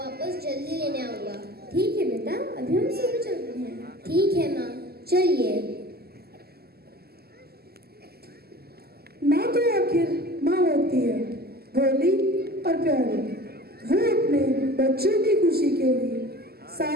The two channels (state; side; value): late; left; 0.46 ms